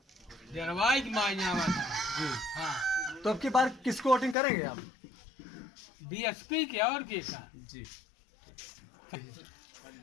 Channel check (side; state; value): right; drops out; at 4.4 s